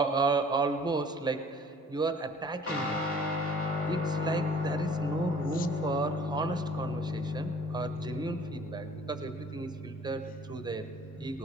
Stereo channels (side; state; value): both; normal; correlation 0.52